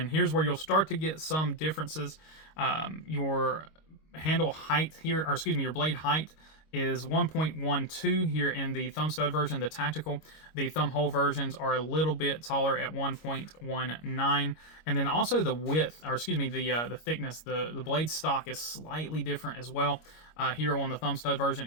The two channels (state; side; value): late; right; 25 ms